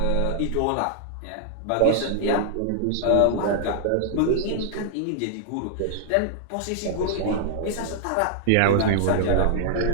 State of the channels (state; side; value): different; both; correlation 0.00